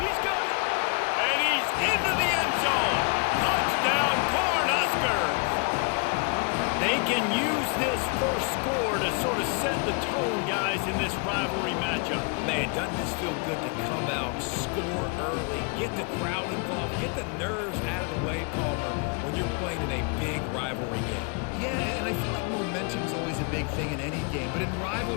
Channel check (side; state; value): right; quieter; 35.0 dB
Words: got it! And he's into the end zone! Touchdown, Cornhuskers! They can use this first score to sort of set the tone, guys, in this rivalry matchup. Man, doesn't this feel good to come out, score early, get the crowd involved, get the nerves out of the way, Palmer, when you're playing in a big rivalry game? Yeah, and I feel like momentum's always a big thing in any game, but in